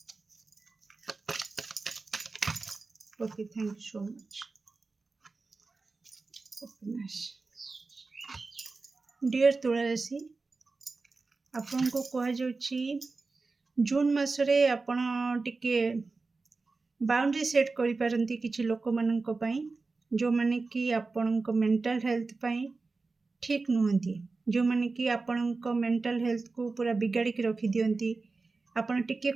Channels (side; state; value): left; quieter; 3.9 dB